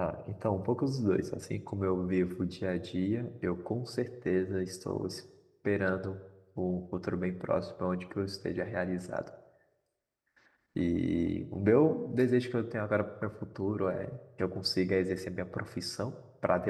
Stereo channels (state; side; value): identical; both; correlation 1.00